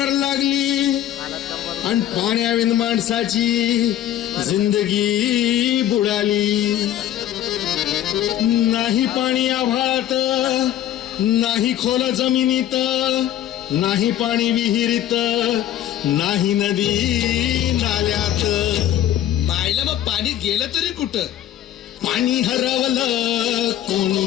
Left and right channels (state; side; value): quieter; right; 11.9 dB